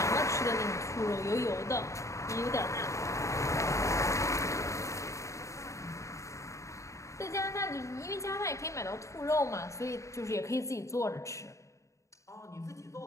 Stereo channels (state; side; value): late; right; 0.15 ms